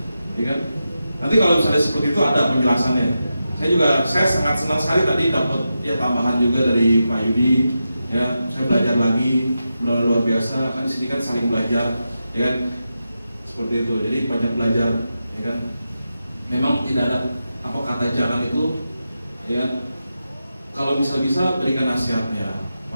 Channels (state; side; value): inverted; both; correlation -0.90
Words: ya kan? Nanti kalau misalnya seperti itu ada penjelasannya. Saya sangat senang sekali tadi dapat ya tambahan juga dari Pak Yudi. Ya, saya belajar lagi, luar biasa. Kan di sini kan saling belajar, ya kan? Seperti itu. Jadi banyak belajar, ya kan? Memang tidak ada apa kata jangan itu, ya. Kalau bisa berikan nasihatnya